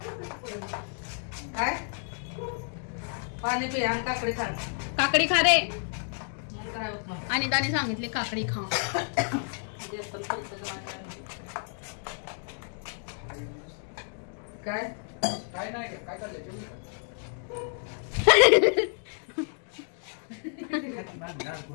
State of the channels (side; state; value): right; silent; 58 dB below the other